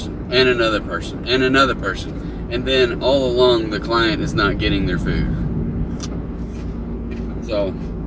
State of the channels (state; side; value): identical; both; correlation 1.00